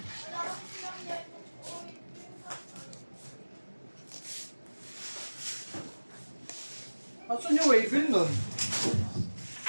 Asan yung waybill nun?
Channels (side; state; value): both; inverted; correlation -1.00